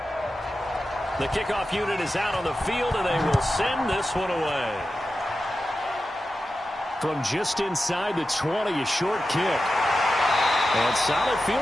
The kickoff unit is out on the field, and they will send this one away. From just inside the 20, a short kick. And solid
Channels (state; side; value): normal; both; correlation 0.92